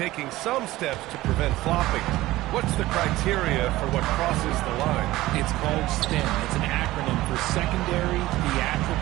some steps to prevent flopping. What's the criteria for what crosses the line? It's called STEM. It's an acronym for secondary,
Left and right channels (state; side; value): quieter; left; 17.2 dB